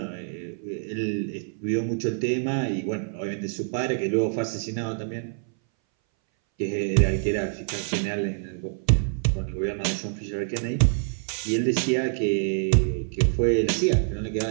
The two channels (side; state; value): left; silent; 60 dB below the other